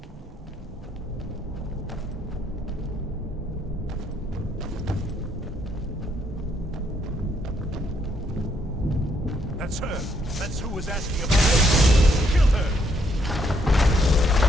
That's her. That's who was asking about it. Kill her.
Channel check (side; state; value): both; normal; correlation 0.72